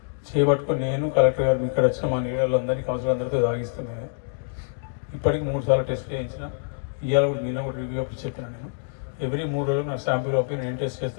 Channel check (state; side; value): silent; right; digital silence